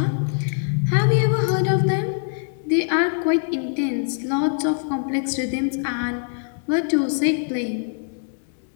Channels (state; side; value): silent; right; digital silence